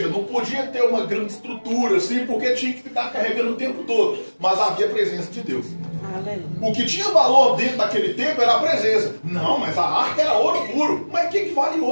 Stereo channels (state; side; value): inverted; both; correlation -1.00